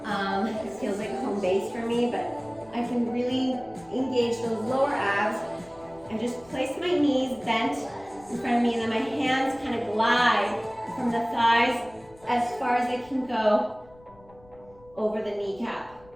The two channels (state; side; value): noise; left; rumble, 26 dB below the sound